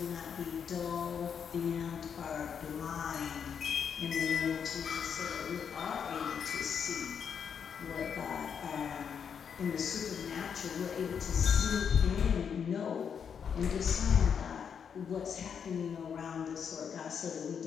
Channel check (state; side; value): quieter; right; 7.2 dB